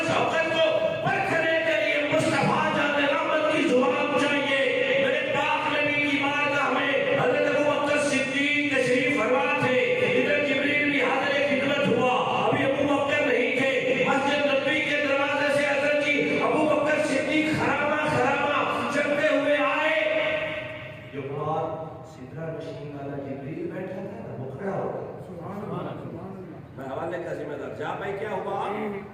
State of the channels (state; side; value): identical; both; correlation 1.00